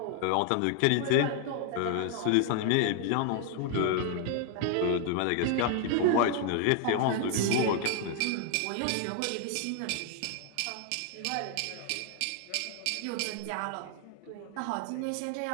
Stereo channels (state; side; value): different; both; correlation 0.00